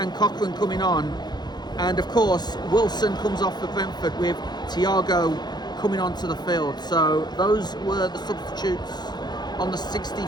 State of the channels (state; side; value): late; right; 0.21 ms